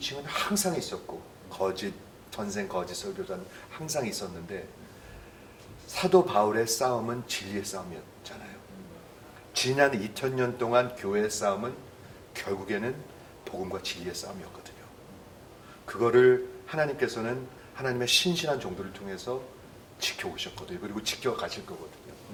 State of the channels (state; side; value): identical; both; correlation 1.00